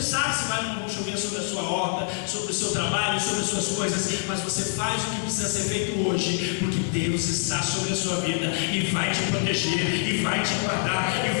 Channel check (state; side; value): silent; right; digital silence